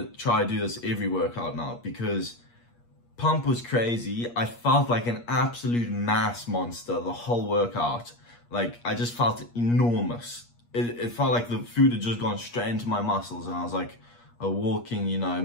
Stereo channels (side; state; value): right; late; 8.4 ms